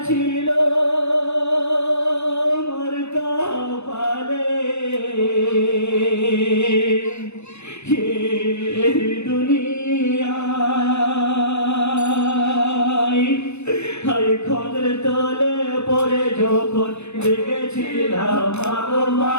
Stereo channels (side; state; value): right; late; 0.81 ms